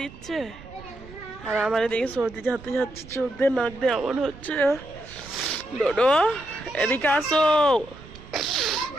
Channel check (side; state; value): right; noise; rumble, 18 dB below the sound